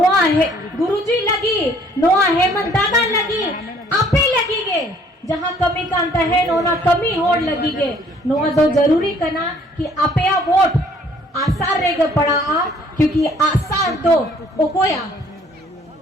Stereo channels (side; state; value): both; normal; correlation 0.60